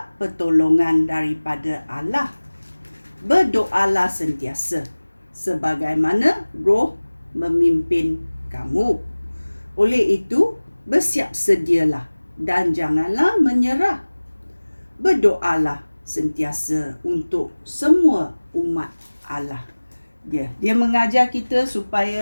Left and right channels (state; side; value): inverted; both; correlation -1.00